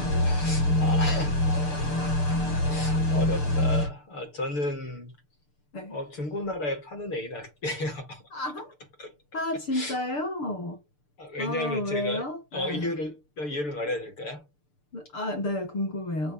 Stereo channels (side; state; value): right; late; 6.7 ms